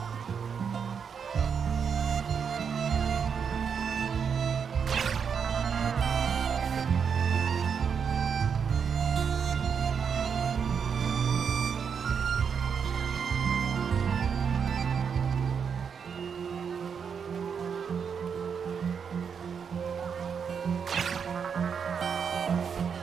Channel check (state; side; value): quieter; left; 6.7 dB